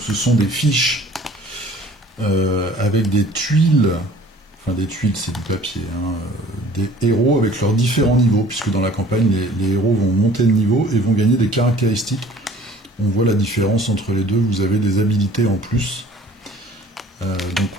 ce sont des fiches avec des tuiles, enfin des tuiles c'est du papier, hein, des héros avec leurs différents niveaux, puisque dans la campagne les héros vont monter de niveau et vont gagner des caractéristiques. On voit la différence entre les deux, vous avez des habilités en plus. Donc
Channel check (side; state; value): both; normal; correlation 0.50